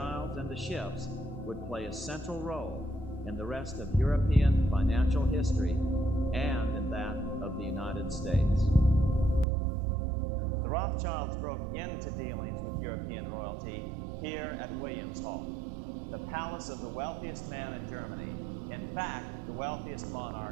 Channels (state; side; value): drops out; left; at 9.5 s